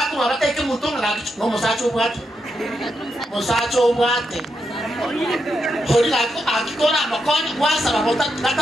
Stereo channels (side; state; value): both; normal; correlation 0.83